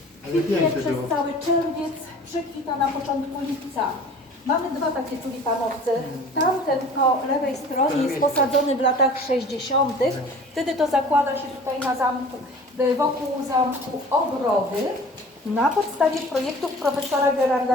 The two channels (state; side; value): normal; both; correlation 0.44